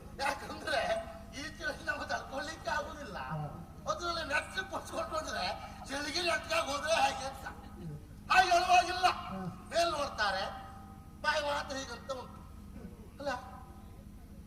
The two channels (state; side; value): identical; both; correlation 1.00